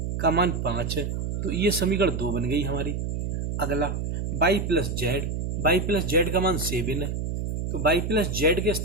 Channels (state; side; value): noise; right; hum, 2 dB below the sound